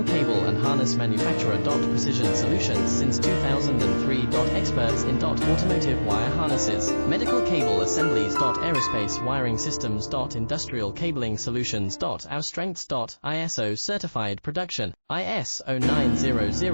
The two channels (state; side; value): inverted; both; correlation -1.00